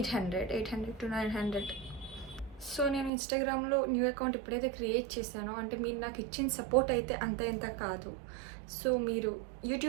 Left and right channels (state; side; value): drops out; left; at 3.1 s